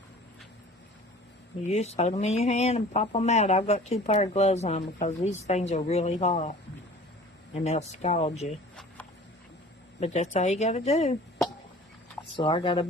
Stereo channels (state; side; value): normal; both; correlation 0.46